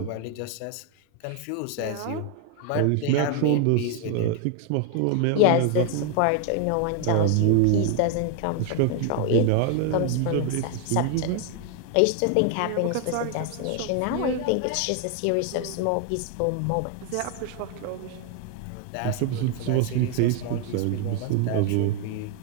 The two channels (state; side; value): different; both; correlation 0.00